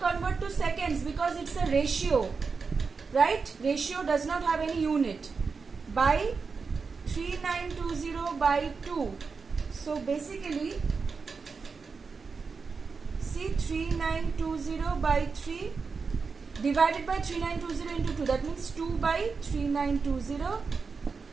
to seconds because it's a ratio, right? Ratio does not have any unit. By 3920 by 2. So basically, see, 3920 by 3 divided by 3920 into 2. That means 2 by 3920,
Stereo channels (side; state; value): left; quieter; 4.9 dB